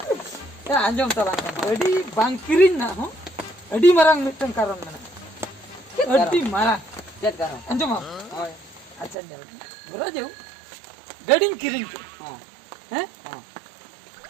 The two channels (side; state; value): left; drops out; at 9.2 s